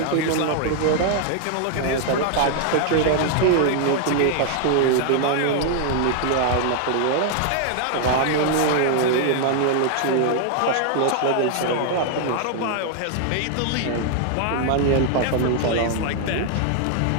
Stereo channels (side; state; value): both; different; correlation 0.00